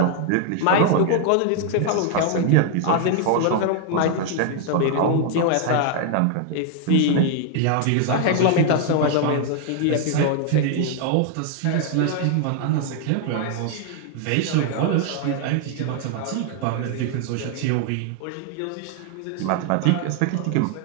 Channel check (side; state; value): both; different; correlation 0.00